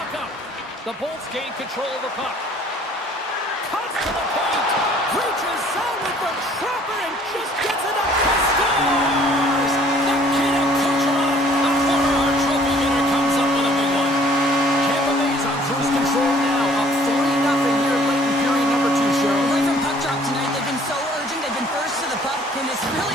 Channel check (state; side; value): normal; both; correlation 0.56